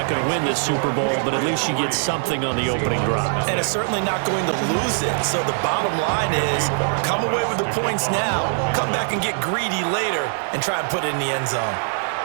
going to win this Super Bowl, but at least you get something on the opening drive. And it's certainly not going to lose it. So the bottom line is, come away with the points now, come back and get greedy later, and try and put it in the end zone.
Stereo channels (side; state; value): left; silent; 59 dB below the other